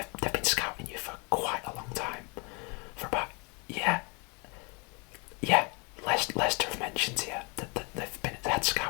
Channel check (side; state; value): right; quieter; 32.2 dB